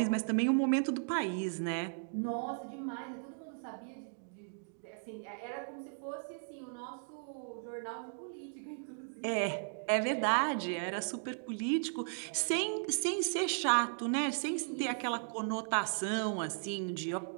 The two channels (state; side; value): silent; left; digital silence